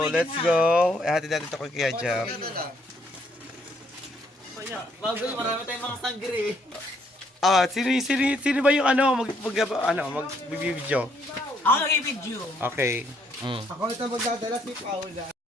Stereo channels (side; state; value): both; normal; correlation 0.69